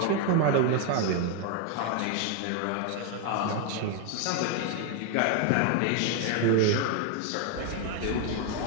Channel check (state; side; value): different; both; correlation 0.01